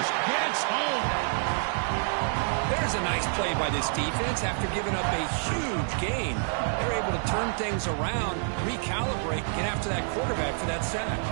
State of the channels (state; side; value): silent; left; 58 dB below the other